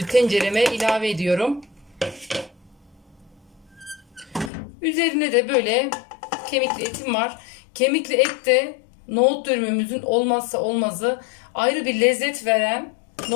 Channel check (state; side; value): drops out; right; at 4.5 s